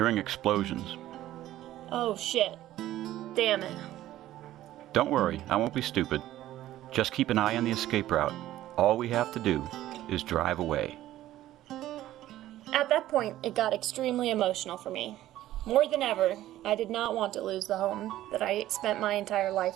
explosions. "Oh shit. Damn it." Don't worry, I won't be stupid. Just keep an eye on the escape route. All we have to do is drive away. At that point, it got extremely emotional for me. More than ever, I did not want to lose the home that I spent my entire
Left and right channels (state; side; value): quieter; left; 14.1 dB